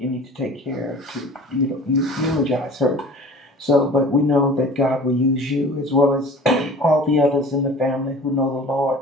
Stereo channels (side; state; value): both; normal; correlation 0.43